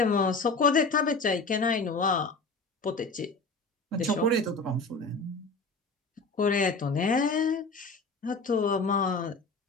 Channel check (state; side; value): quieter; right; 3.5 dB